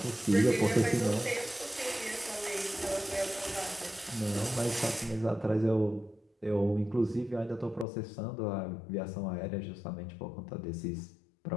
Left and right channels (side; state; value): right; drops out; at 7.9 s